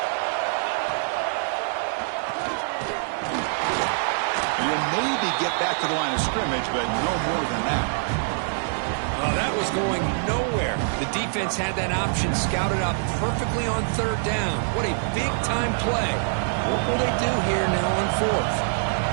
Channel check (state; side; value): silent; left; 56 dB below the other